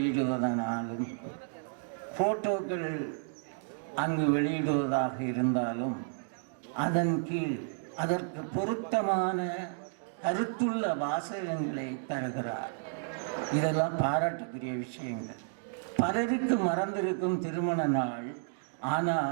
போட்டோக்கள் அங்கு வெளியிடுவதாக இருந்தாலும் அதன் கீழ் அதற்கு பொருத்தமான கருத்துள்ள வாசகங்களை தருகிறார். இதெல்லாம் பாராட்டுக்குரிய விஷயங்கள். பலருக்கு மறந்திருக்கும் திருமண நாள்,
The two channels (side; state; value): left; silent; digital silence